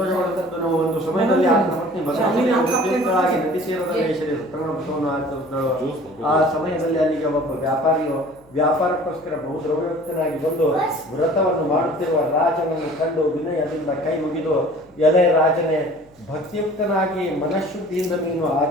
ಒಂದು ಸಮಯದಲ್ಲಿ ಆತನ ಪತ್ನಿ ಭದ್ರವಾಗಿ ನದಿ ಸೇರದಲ್ಲಿ ಶ್ರೀ ಸತ್ಯನಾರಾಯಣ ವ್ರತವನ್ನು ಆಚರಿಸಿದಳು. ಆ ಸಮಯದಲ್ಲಿ ಅಲ್ಲಿಗೆ ಒಬ್ಬ ವ್ಯಾಪಾರಿಯು ವ್ಯಾಪಾರಕ್ಕೋಸ್ಕರ ಬಹು ದ್ರವ್ಯಯುಕ್ತನಾಗಿ ಬಂದು ವ್ರತವನ್ನು ಮಾಡುತ್ತಿರುವ ರಾಜನನ್ನು ಕಂಡು ವಿನಯದಿಂದ ಕೈ ಮುಗಿದು, ಎಲೆ ರಾಜನೇ, ಭಕ್ತಿಯುಕ್ತನಾಗಿ ಮನಃಶುದ್ಧಿಯಿಂದ ನೀನು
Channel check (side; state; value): left; noise; hum, 30 dB below the sound